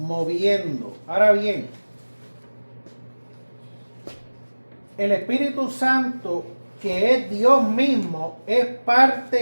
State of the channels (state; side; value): inverted; both; correlation -1.00